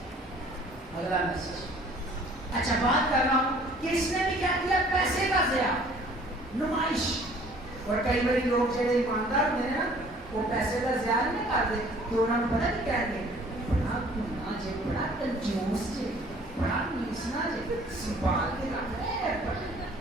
اگلا میسج اچھا بات کر رہا ہوں کہ اس نے بھی کیا کیا پیسے کا ضیاع نمائش اور کئی بڑی لوگ جو ایماندار ہوتے ہیں نا وہ پیسے کا ضیاع نہیں کرتے تو انہوں نے پتہ نہیں کہہ دیں بڑا گناہ جے بڑا کنجوس جے بڑا نیسنا جے سنبھال کے رکھ رہے ہیں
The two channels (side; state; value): both; normal; correlation 0.54